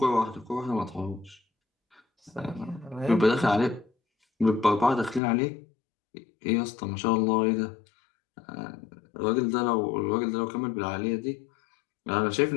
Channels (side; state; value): right; drops out; at 5.2 s